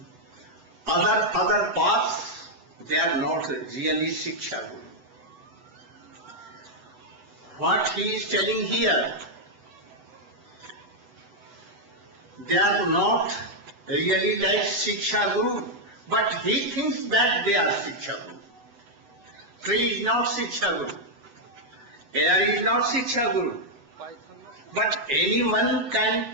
other paths, they are not really Shiksha Guru. What he is telling here, they are not really like Shiksha Guru, but he thinks that they are Shiksha Guru. Tree is not Shiksha Guru. Air is not Shiksha Guru. But anyone can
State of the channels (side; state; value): left; late; 8.0 ms